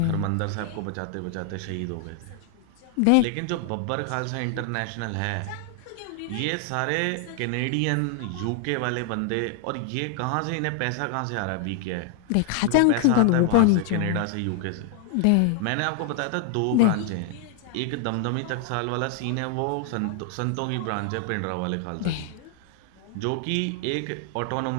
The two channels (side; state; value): both; different; correlation 0.00